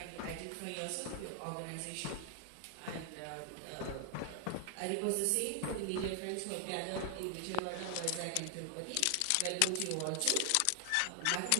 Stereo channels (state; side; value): different; both; correlation 0.00